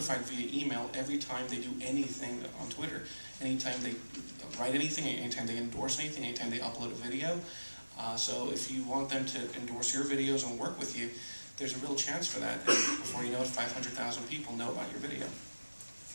via email every time they do anything on Twitter, anytime they write anything, anytime they endorse anything, anytime they upload a video. So if you want them to endorse your videos and work with you, there's a real chance for that. And before you know it, 500,000 people know about your video.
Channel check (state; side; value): inverted; both; correlation -1.00